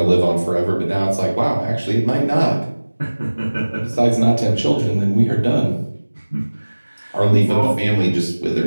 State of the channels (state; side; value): inverted; both; correlation -1.00